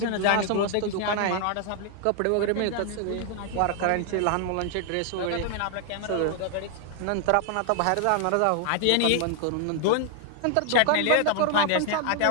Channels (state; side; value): different; both; correlation 0.00